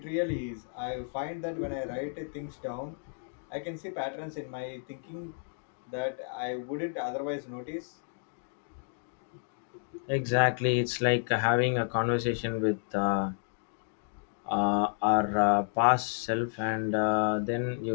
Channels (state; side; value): silent; right; digital silence